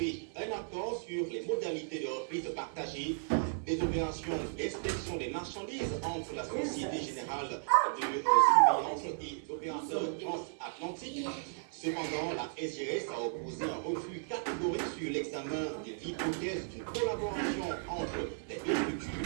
un accord sur les modalités de reprise partagée des opérations d'inspection des marchandises entre la Société Générale de Surveillance et l'opérateur transatlantique. Cependant, la SGS a opposé un refus catégorique sur l'examen de l'hypothèse d'une collaboration entre les deux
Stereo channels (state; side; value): silent; left; 54 dB below the other